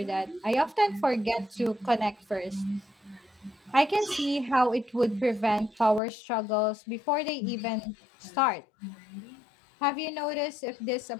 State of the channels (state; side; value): drops out; right; at 6.0 s